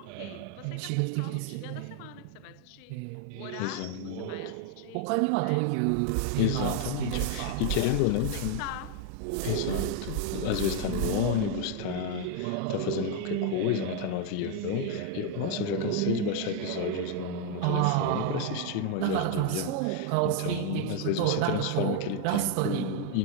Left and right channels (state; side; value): different; both; correlation 0.01